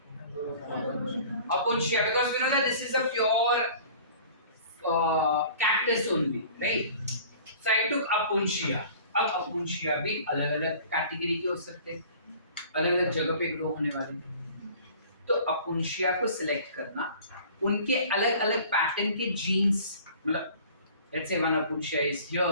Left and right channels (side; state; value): both; inverted; correlation -0.47